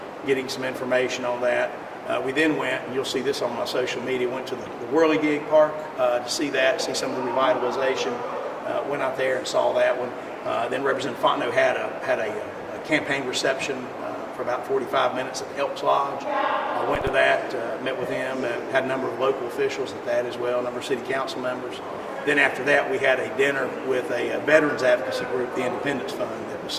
getting some information on that. We then went, and you'll see this on my social media, went to the Whirligig Park to see that, see some of the revitalization. Went out there and saw that one. Then Representative Fontenot had a campaign reception for about 45 minutes at the Elks Lodge. I went to that, met with him, had a number of local officials at that as well, a number of city council members. Then after that, we had a dinner with a veterans advocacy group, the Independence Fund, that was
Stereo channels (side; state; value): both; identical; correlation 1.00